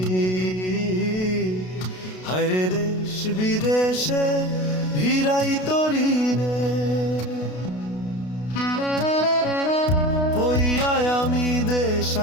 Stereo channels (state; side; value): late; right; 32 ms